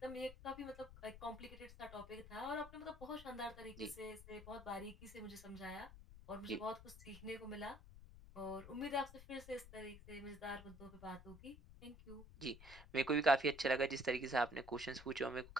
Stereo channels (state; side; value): noise; left; rumble, 16 dB below the sound